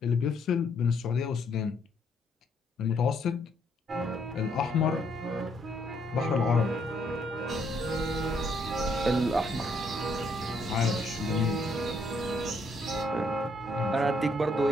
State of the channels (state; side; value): normal; both; correlation 0.71